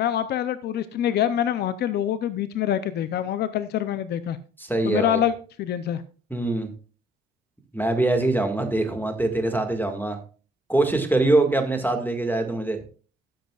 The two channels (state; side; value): normal; both; correlation 0.58